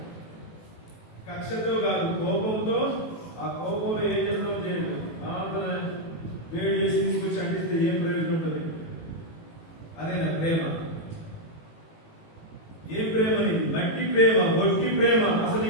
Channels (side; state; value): right; late; 18 ms